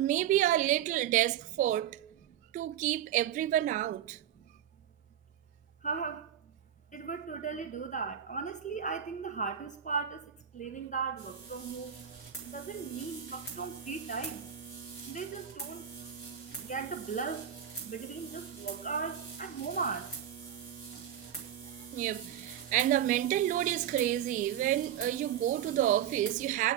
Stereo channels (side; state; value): left; quieter; 10.1 dB